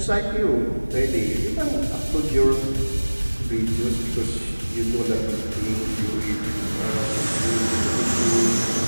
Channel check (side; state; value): both; inverted; correlation -1.00